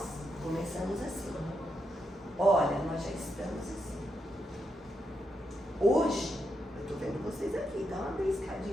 começamos assim. Olha, nós já estamos assim. Hoje, eu estou vendo vocês aqui, dá uma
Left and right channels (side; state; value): both; normal; correlation 0.82